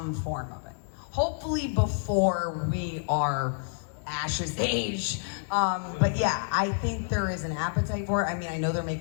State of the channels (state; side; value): silent; right; digital silence